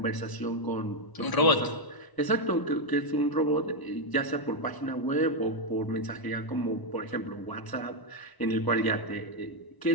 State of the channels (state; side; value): late; right; 1.0 ms